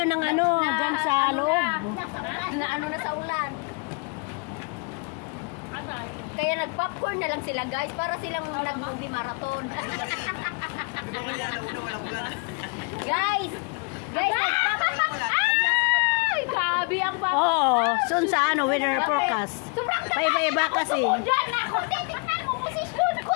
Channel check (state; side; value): quieter; right; 34.2 dB